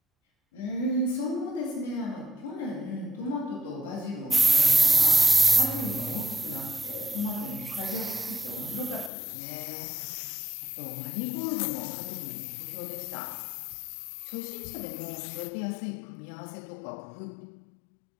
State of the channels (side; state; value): right; drops out; at 9.1 s